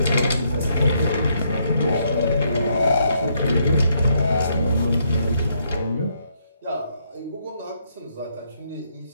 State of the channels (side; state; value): both; inverted; correlation -0.74